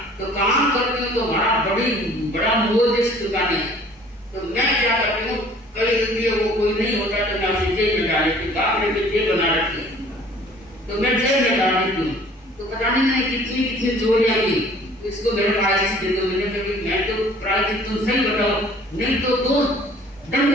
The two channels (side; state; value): both; normal; correlation 0.52